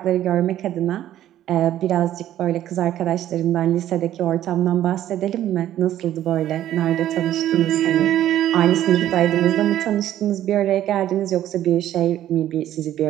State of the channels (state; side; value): quieter; left; 12.3 dB